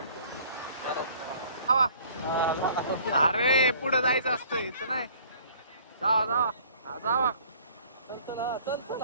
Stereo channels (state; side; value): inverted; both; correlation -0.54